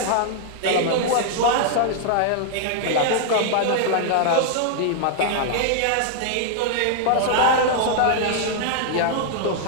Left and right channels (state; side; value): different; both; correlation 0.00